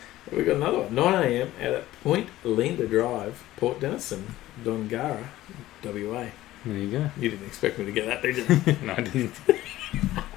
We've got another one. 9 a.m. at Point Linda Drive, Port Denison, Dongara, WA. There you go. You didn't expect me to get that, did you? No, I didn't.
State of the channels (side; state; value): right; quieter; 15.6 dB